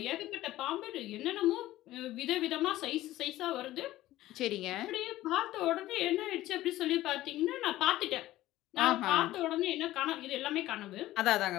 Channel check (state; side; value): quieter; right; 15.5 dB